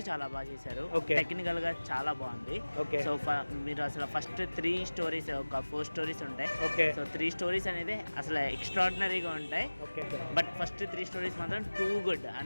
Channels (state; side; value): inverted; both; correlation -1.00